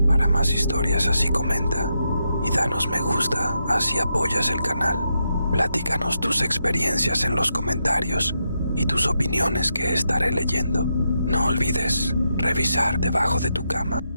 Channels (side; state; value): both; inverted; correlation -0.84